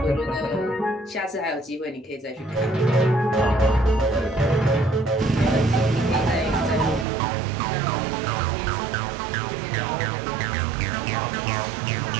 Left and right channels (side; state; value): left; drops out; at 7.1 s